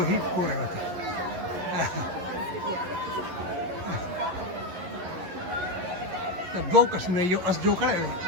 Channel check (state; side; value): late; left; 11 ms